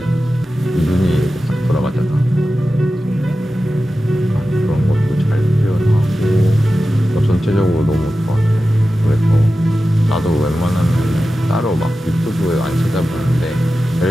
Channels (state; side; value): normal; both; correlation 0.93